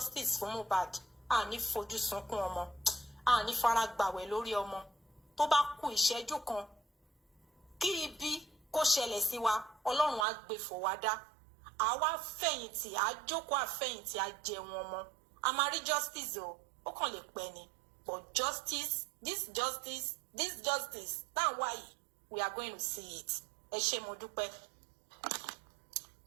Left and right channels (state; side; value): drops out; left; at 10.2 s